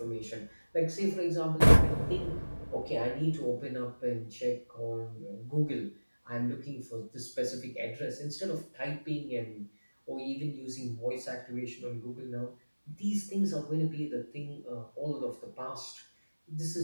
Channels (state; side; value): inverted; both; correlation -1.00